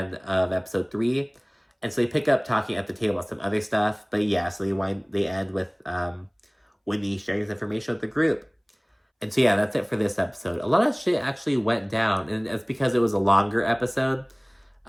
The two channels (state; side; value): identical; both; correlation 1.00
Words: episode 3, and so they pick up talking at the table about some other stuff. But yeah, so they end with Whitney sharing this information with the group. And so yeah, that's it for this episode. A lot of shit actually went down, and it's because it was a longer episode.